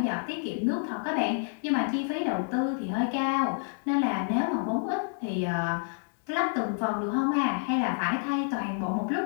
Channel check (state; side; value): silent; right; 59 dB below the other